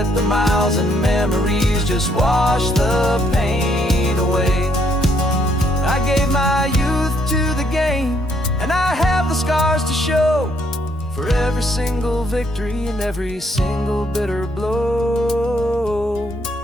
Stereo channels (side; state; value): both; normal; correlation 0.70